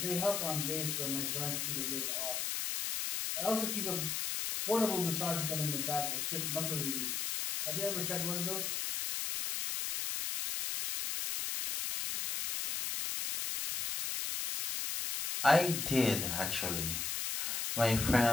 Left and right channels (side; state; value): left; noise; hiss, 1 dB below the sound